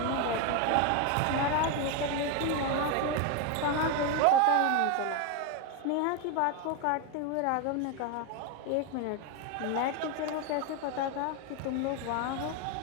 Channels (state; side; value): different; both; correlation 0.02